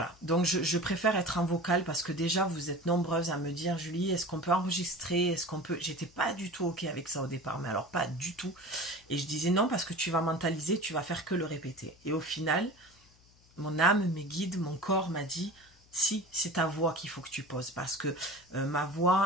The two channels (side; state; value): left; noise; hum, 29 dB below the sound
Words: donc je préfère être en vocal parce que déjà vous êtes nombreuses à me dire Julie, est-ce qu'on peut enregistrer, est-ce qu'on peut, j'étais pas du tout ok avec ça au départ, mais alors pas du tout, et je disais non parce que tu vas mentaliser, tu vas faire que le répéter, et au final, mon âme, mes guides, mon corps m'a dit si, c'est ta voix qu'il faut que tu poses, parce que ma